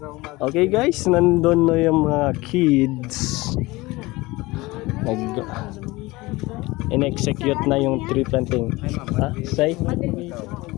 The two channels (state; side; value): quieter; right; 21.3 dB